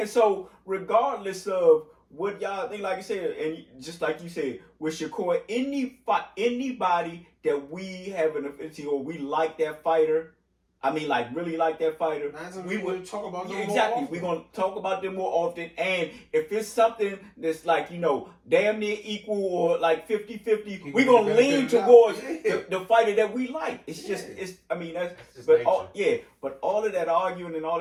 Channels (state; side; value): identical; both; correlation 1.00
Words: So regardless of what y'all think, like I said, and just like you said, with Shakur, anybody that we have an affinity or we like that fighter, I mean, like really like that fighter, we would talk about them more exactly. often. We're gonna talk about them more often, and if it's something that's like damn near equal or like 50-50, we're gonna lean towards the fighter that we like. It's just I mean that's but but all of that arguing and all